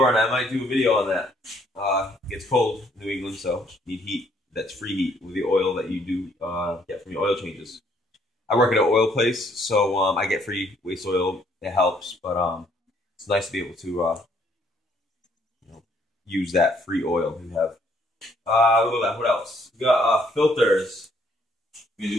I might do a video on that. It gets cold in New England, so you need heat. That's free heat with the oil that you do get from your oil changes. I work at an oil place, so I get free waste oil. It helps, but it's nice to be able to use that free oil you have. Look at that. What else? We got filters. You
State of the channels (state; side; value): normal; both; correlation 0.66